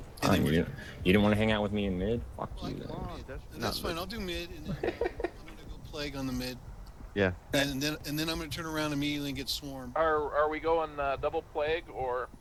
You didn't want to hang out with me in mid? Fuck you. And that's fine. I'll do mid, and then I'm gonna go plague on the mid. Yeah. And then I'm gonna turn around immediately and get swarmed. Are we going double plague or?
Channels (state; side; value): identical; both; correlation 1.00